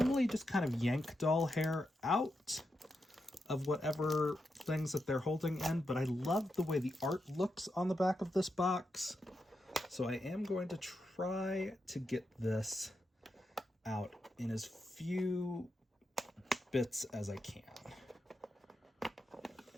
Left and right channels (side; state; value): both; normal; correlation 0.86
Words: just kind of yank doll hair out of whatever things that they're holding in, but I love the way the art looks on the back of this box. So I am going to try to get this out in as few bits as I can.